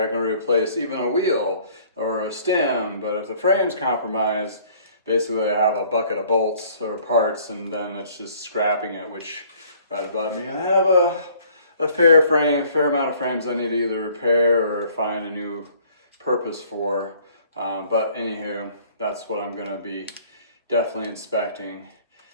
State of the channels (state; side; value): inverted; both; correlation -0.57